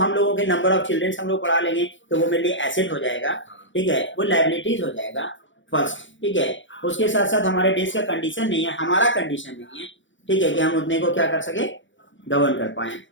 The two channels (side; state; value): right; late; 0.55 ms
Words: लोगों के नंबर ऑफ चिल्ड्रन हम लोग पढ़ा लेंगे तो वो मेरे लिए एसेट हो जाएगा, ठीक है, वो लायबिलिटीज हो जाएगा फर्स्ट, ठीक है। उसके साथ साथ हमारे देश का कंडीशन नहीं है, हमारा कंडीशन नहीं है, ठीक है, कि हम उतने को क्या कर सके, गवर्न कर पाए।